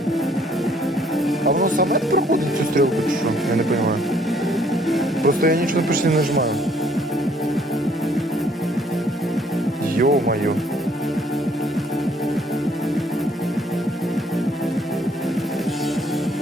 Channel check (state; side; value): normal; both; correlation 0.63